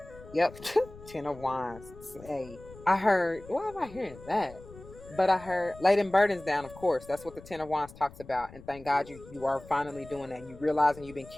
Yep, 10 of Wands. Hey, I heard. Why am I hearing that? But I heard laying burdens down. Of course, that's what the 10 of Wands talks about. And thank God you are finally doing that. You realizing you've been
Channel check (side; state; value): left; noise; rumble, 19 dB below the sound